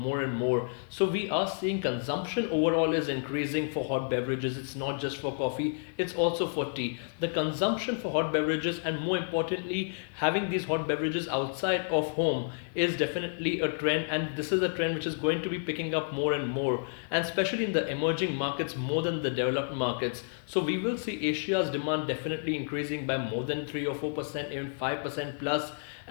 and more. So we are seeing consumption overall is increasing for hot beverages. It's not just for coffee, it's also for tea. The consumption for hot beverages and more importantly, having these hot beverages outside of home is definitely a trend, and this is a trend which is going to be picking up more and more, and especially in the emerging markets more than the developed markets. So we will see Asia's demand definitely increasing by more than 3 or 4%, even 5% plus.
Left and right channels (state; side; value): silent; right; 58 dB below the other